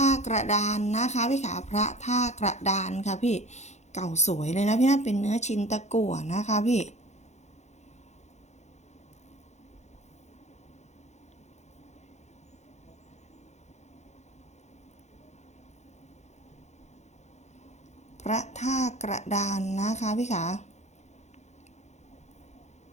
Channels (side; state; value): right; late; 0.33 ms